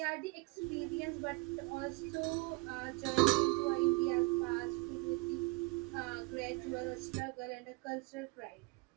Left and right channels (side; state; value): left; quieter; 25.9 dB